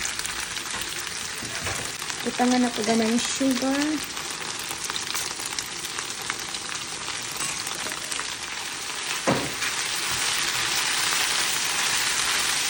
Butangan ako gamay sugar.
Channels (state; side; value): identical; both; correlation 1.00